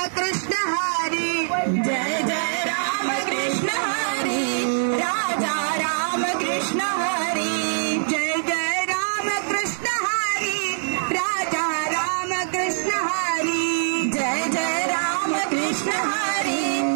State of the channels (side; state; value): left; silent; 63 dB below the other